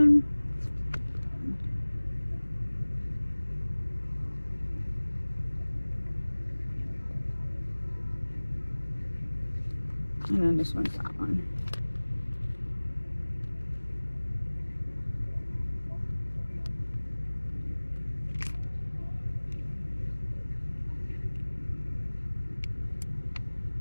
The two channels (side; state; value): both; inverted; correlation -1.00